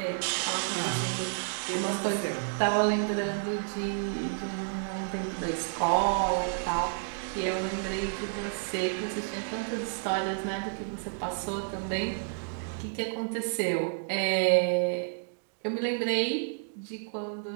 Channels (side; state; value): left; silent; digital silence